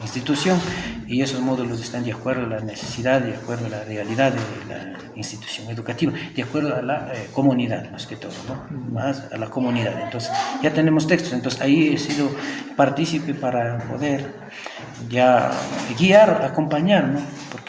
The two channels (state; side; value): identical; both; correlation 1.00